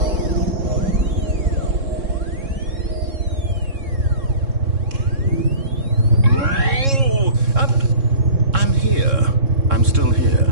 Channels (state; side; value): late; left; 3.7 ms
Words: I'm still here